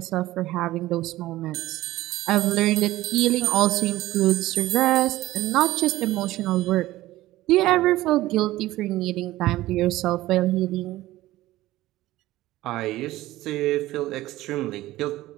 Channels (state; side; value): quieter; left; 16.6 dB